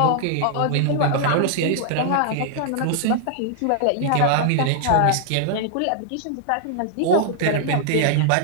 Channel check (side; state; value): both; different; correlation 0.00